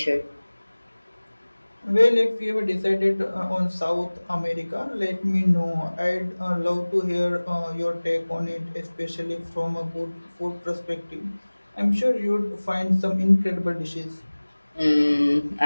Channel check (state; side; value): inverted; both; correlation -1.00